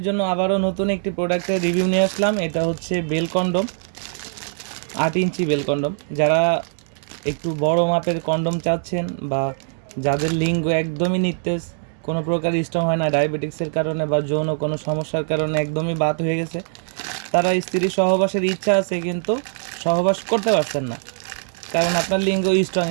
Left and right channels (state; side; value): silent; left; digital silence